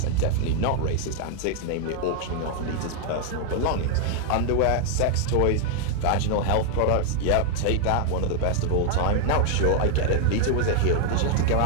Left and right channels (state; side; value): different; both; correlation 0.00